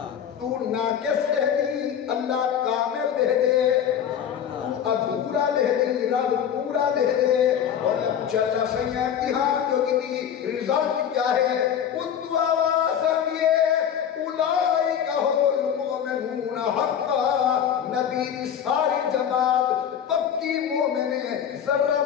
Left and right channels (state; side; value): quieter; right; 8.8 dB